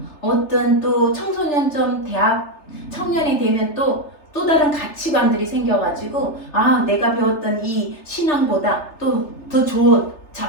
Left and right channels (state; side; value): late; right; 3.3 ms